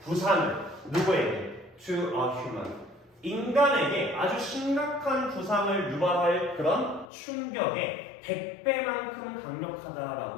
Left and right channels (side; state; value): right; drops out; at 7.1 s